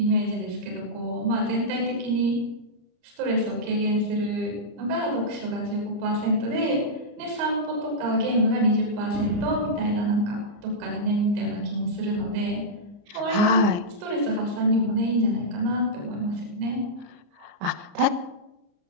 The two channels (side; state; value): left; late; 34 ms